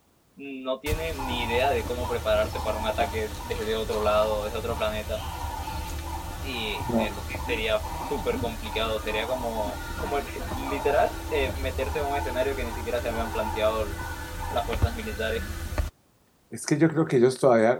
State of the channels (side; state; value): both; identical; correlation 1.00